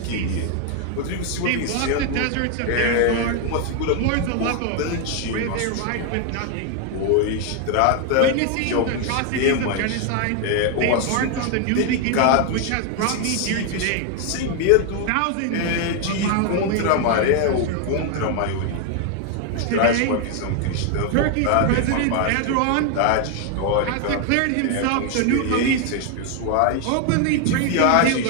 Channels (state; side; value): different; both; correlation 0.01